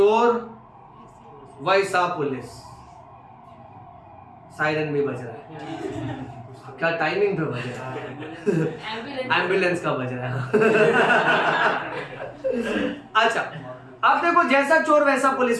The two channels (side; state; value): both; identical; correlation 1.00